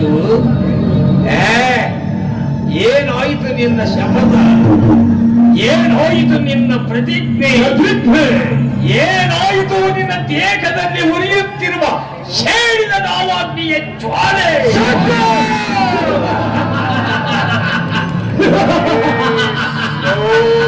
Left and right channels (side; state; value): both; identical; correlation 1.00